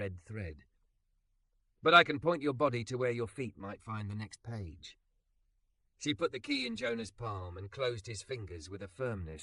thread. But I can point your body to where your feet might find the next page. She put the key in Jonah's palm and closed his fingers with a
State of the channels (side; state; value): both; identical; correlation 1.00